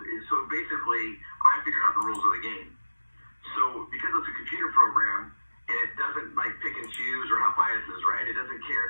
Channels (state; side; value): inverted; both; correlation -1.00